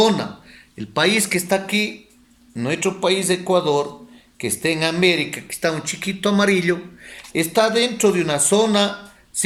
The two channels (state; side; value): identical; both; correlation 1.00